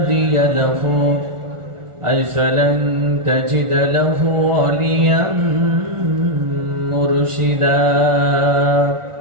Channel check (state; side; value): late; left; 1.4 ms